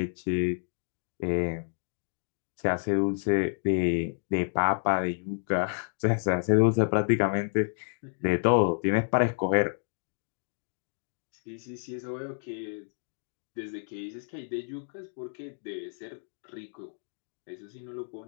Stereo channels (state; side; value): silent; right; digital silence